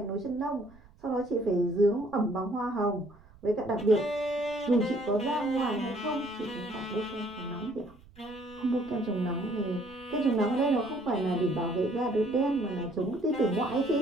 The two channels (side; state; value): right; noise; rumble, 24 dB below the sound